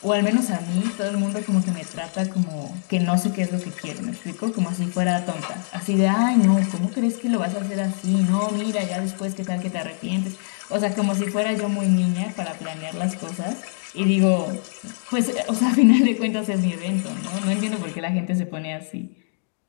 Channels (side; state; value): right; silent; digital silence